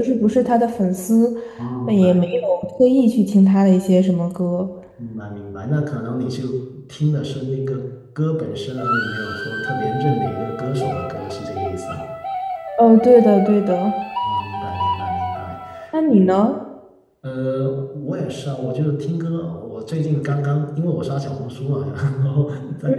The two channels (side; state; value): both; identical; correlation 1.00